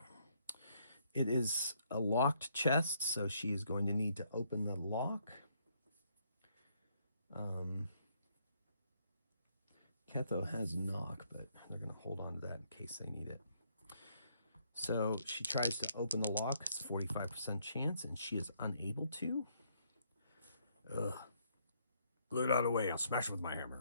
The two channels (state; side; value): inverted; both; correlation -0.71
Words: it is a locked chest, so she is going to need to open the lock. Ketho has knock, but they're going to hold on to that in case they need it. So she tries to open the lock. It's a 45% chance, and she is unable to. Ugh. Glue it out of the way. I'll smash it with my